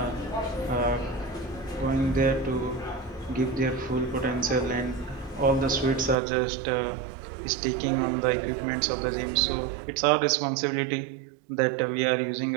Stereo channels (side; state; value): left; drops out; at 6.2 s